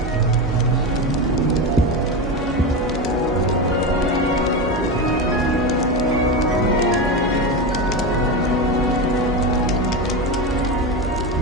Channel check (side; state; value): both; normal; correlation 0.18